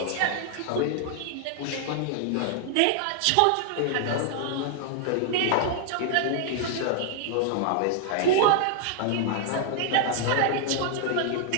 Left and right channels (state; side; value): different; both; correlation -0.01